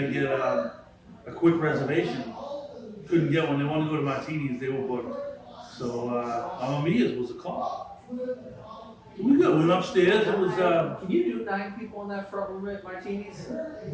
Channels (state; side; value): identical; both; correlation 1.00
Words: get a quick reservation. Couldn't get one. They wanted to go to Martini's. They were booked. So Mamma Mia's was a call. We went upstairs. It was can you do 9 people in that front room at Martini's?